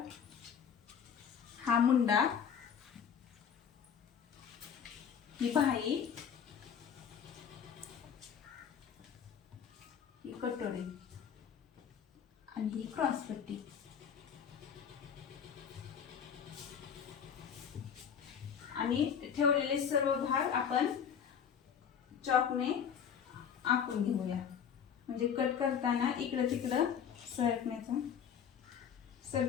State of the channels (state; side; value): quieter; right; 7.7 dB